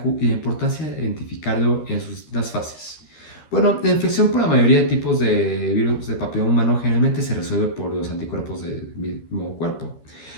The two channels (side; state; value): right; late; 13 ms